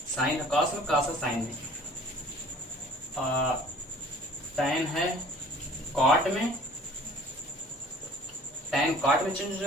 साइन है कॉस में, कॉस है साइन में। टैन है कॉट में, टैन कॉट में चेंज हो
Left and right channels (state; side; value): normal; both; correlation 0.49